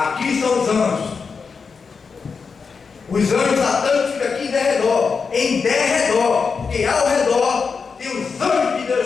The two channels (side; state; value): right; quieter; 5.3 dB